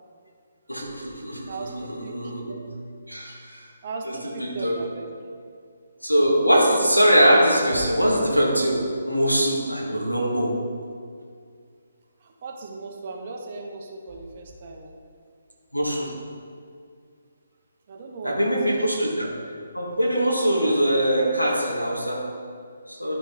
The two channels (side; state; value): both; inverted; correlation -0.85